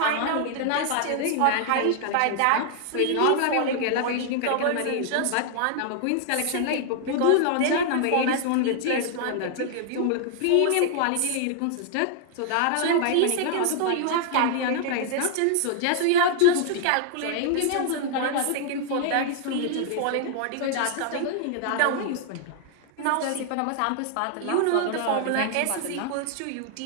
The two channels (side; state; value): both; different; correlation 0.00